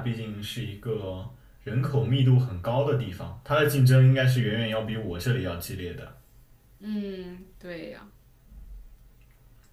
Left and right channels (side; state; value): both; identical; correlation 1.00